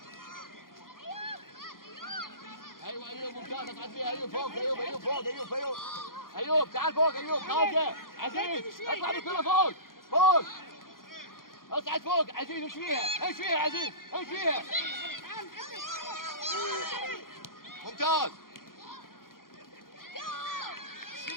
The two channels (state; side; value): late; right; 0.91 ms